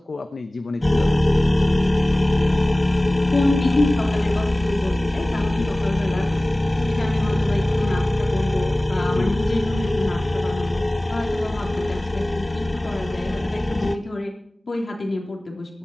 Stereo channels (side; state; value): both; normal; correlation 0.98